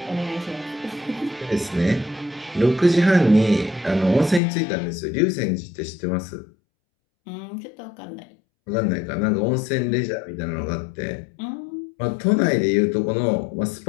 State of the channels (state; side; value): drops out; right; at 4.4 s